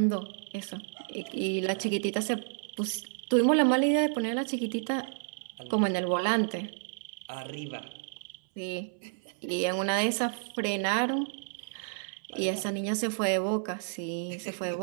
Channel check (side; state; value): left; silent; 57 dB below the other